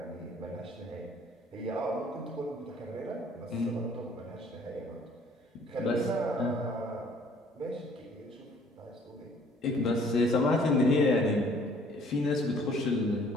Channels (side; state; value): both; normal; correlation 0.57